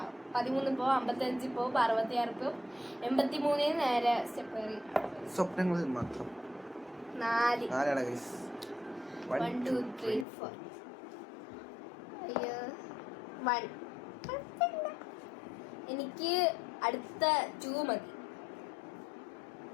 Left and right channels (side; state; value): right; drops out; at 10.2 s